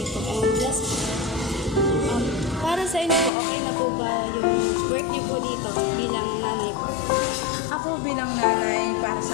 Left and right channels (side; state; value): right; drops out; at 3.3 s